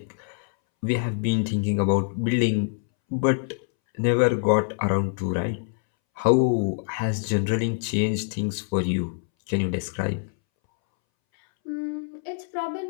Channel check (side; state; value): right; silent; 62 dB below the other